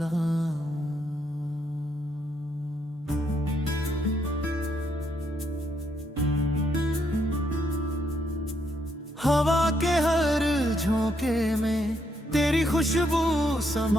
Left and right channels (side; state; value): both; normal; correlation 0.75